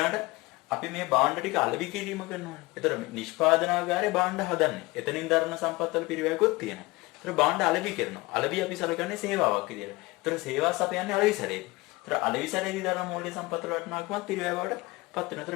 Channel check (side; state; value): right; quieter; 22.4 dB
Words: අපි මේ භාණ්ඩ ටික අලෙවි කිරීම කරනවානේ. ඒතර නිෂ්පාදනාගාරේ භාණ්ඩ හදන්නේ. එතනින් දරන සම්පත්වල පිරිවැයකුත් තියෙනවා. ඒතර භාණ්ඩ අලෙවි කරනවා. අලෙවි අපි සලකන්නේ සේවාවක් විදියට. ඒතර සේවාව සපයන්නේ අලෙවිසරේ. ඒතර අලෙවිසරේදී දරන මූල්‍ය සම්පත්වල වටිනාකමත් පිරිවැය බවට පත් වෙනවා. ඒතර